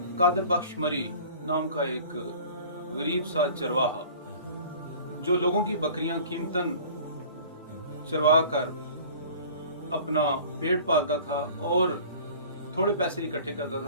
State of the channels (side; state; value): both; inverted; correlation -0.45